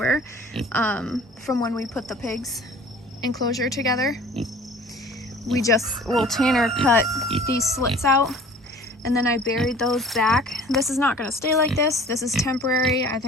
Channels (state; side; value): normal; both; correlation 0.47